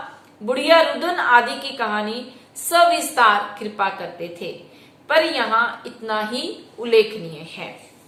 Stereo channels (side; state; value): both; identical; correlation 1.00